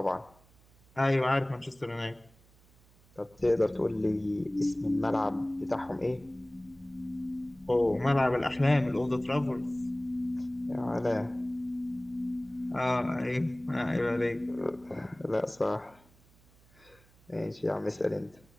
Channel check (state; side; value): noise; right; hum, 29 dB below the sound